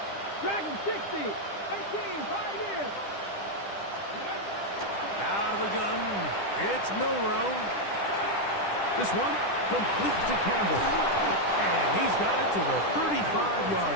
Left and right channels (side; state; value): right; late; 10 ms